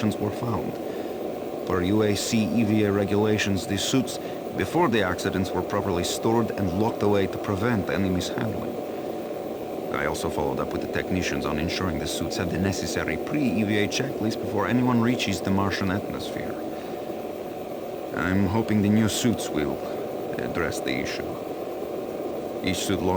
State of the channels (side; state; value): both; identical; correlation 1.00